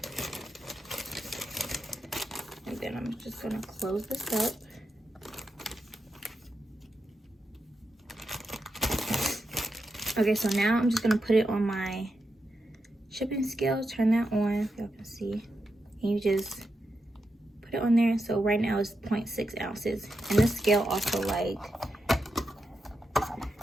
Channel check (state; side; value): normal; both; correlation 0.87